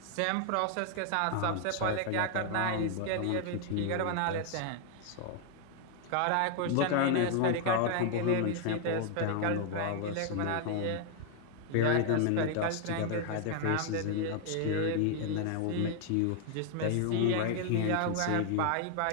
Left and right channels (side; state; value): both; different; correlation 0.00